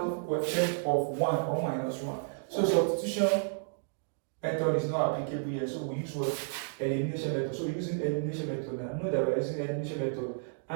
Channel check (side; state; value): left; silent; digital silence